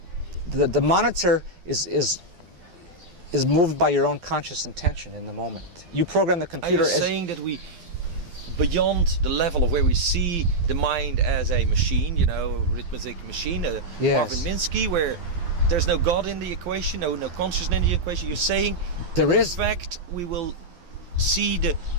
The monitor is moved by your own conscious intention in the moment. You program the computer. Are you saying that we, beyond the level of where we see the mind as a machine, arithmetic machine, yes. Marvin Minsky, where there's no God in the equation, no consciousness in the equation? You're saying there is. In fact, we will see the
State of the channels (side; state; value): left; late; 12 ms